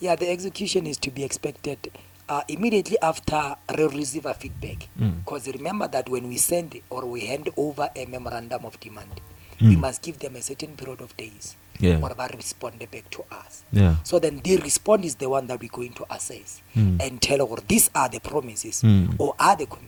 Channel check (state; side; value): identical; both; correlation 1.00